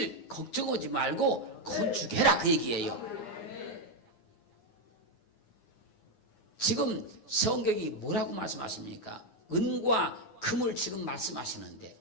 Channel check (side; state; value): right; late; 9.7 ms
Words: 걱정하지 말고 건축해라, 그 얘기예요. 지금 성경이 뭐라고 말씀하십니까? 은과 금을 지금 말씀하시는데